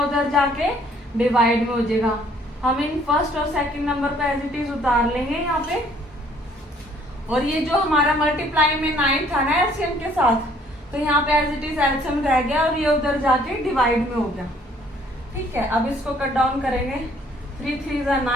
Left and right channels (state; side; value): normal; both; correlation 0.61